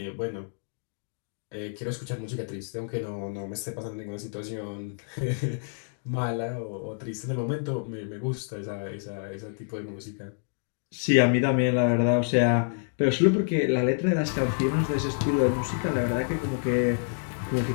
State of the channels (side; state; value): right; silent; digital silence